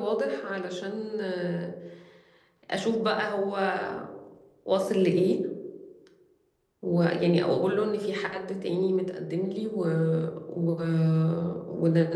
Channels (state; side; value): identical; both; correlation 1.00